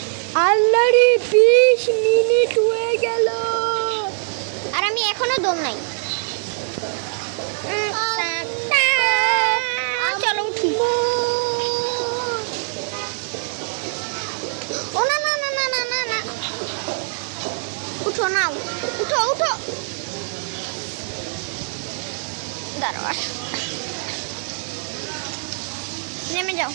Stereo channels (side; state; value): left; silent; digital silence